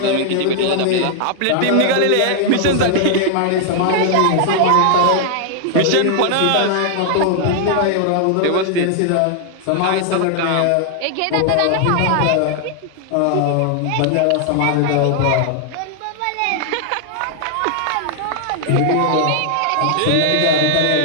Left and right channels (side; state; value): both; different; correlation 0.00